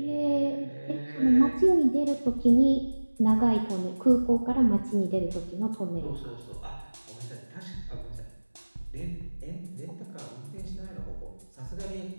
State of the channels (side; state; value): both; inverted; correlation -1.00